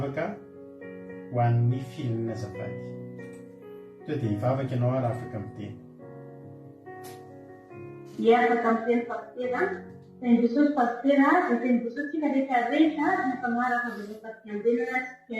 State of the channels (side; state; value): both; identical; correlation 1.00